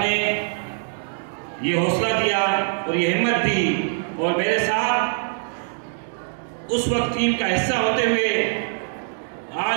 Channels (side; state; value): left; silent; digital silence